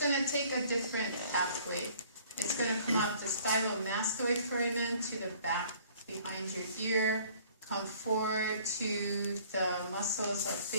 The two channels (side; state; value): both; inverted; correlation -0.55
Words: to take a different pathway. It's going to come out the stylomastoid foramen to the back behind your ear, come forward to the muscles of